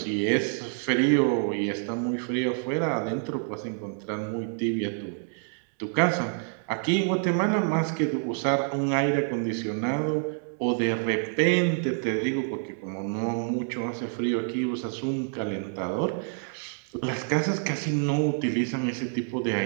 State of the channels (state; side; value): silent; left; 60 dB below the other